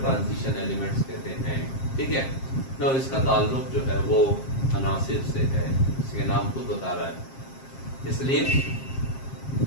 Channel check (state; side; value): late; right; 7.5 ms